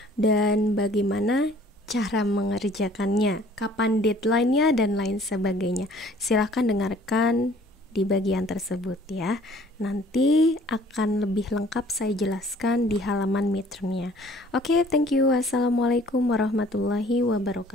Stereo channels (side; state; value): both; normal; correlation 0.55